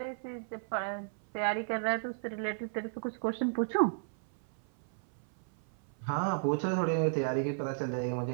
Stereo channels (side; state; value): left; silent; 55 dB below the other